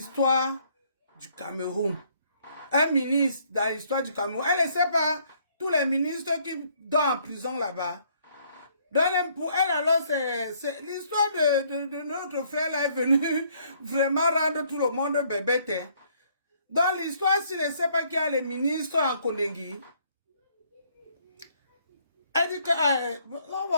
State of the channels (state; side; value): inverted; both; correlation -0.65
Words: du Cameroun. Un ministre dans l'histoire du Cameroun. Elle ne sait pas tous les ministres qui dorment en prison là-bas. Donc pour elle alors, c'est l'histoire de notre frère là est venue vraiment rendre tout le monde bébête. Hein. Dans l'histoire, s'il ne sait pas qu'il y a les ministres en Kondengi, elle dit que on